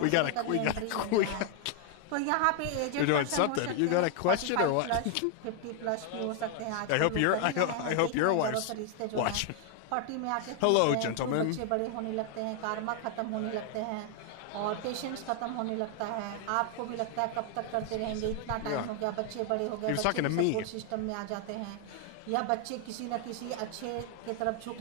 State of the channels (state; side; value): different; both; correlation 0.00